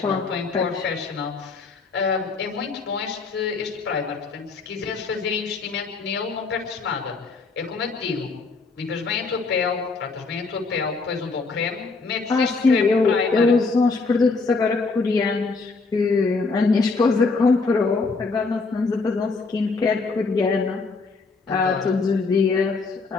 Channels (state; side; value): quieter; right; 4.1 dB